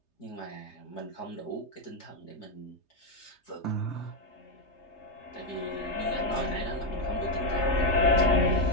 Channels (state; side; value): late; right; 3.3 ms